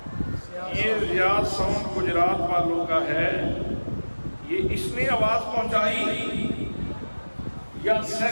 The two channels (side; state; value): both; inverted; correlation -1.00